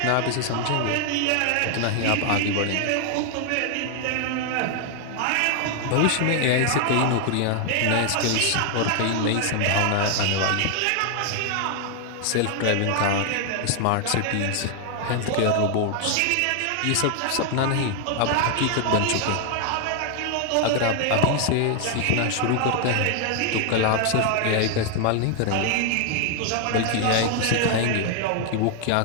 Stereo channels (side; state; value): both; different; correlation 0.00